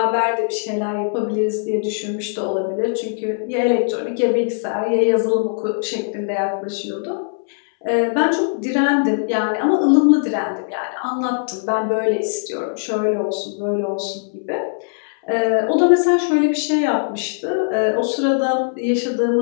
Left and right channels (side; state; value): right; silent; 66 dB below the other